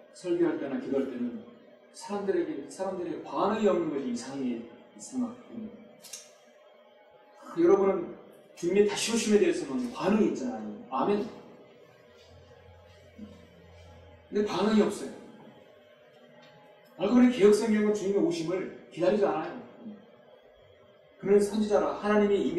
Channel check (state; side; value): identical; both; correlation 1.00